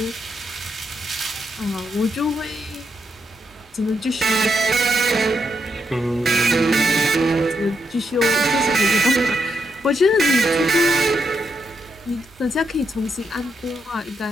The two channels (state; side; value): normal; both; correlation 0.81